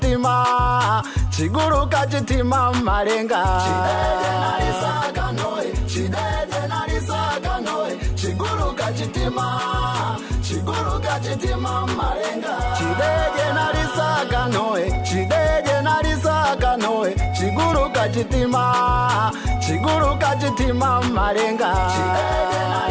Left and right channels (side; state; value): both; identical; correlation 1.00